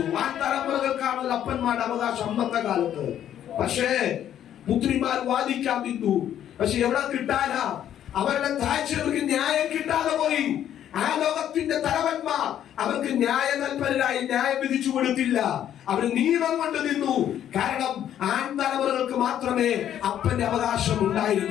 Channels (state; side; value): quieter; right; 10.6 dB